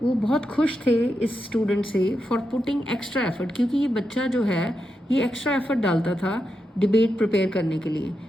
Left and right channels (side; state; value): both; normal; correlation 0.86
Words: वो बहुत खुश थे इस student से for putting extra effort, क्योंकि ये बच्चा जो है ये एक्स्ट्रा एफर्ट डालता था डिबेट प्रिपेयर करने के लिए।